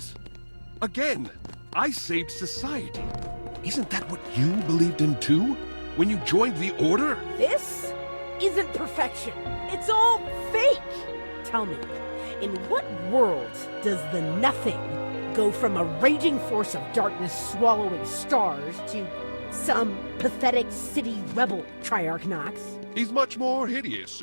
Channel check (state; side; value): inverted; both; correlation -1.00